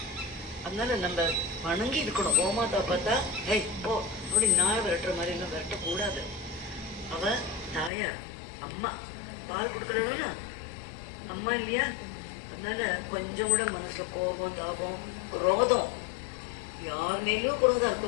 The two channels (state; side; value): drops out; right; at 7.9 s